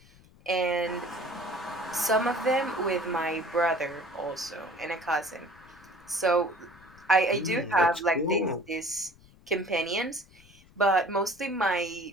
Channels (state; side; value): noise; left; rumble, 25 dB below the sound